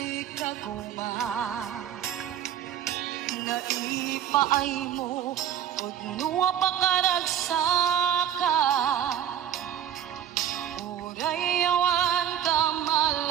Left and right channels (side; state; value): left; quieter; 10.0 dB